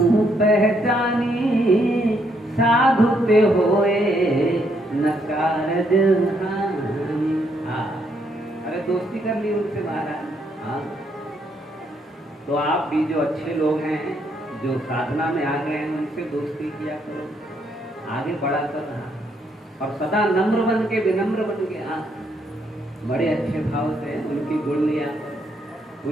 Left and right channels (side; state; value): both; normal; correlation 0.73